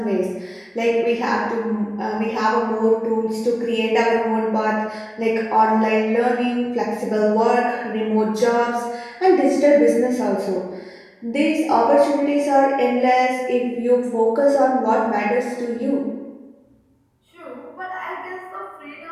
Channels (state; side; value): identical; both; correlation 1.00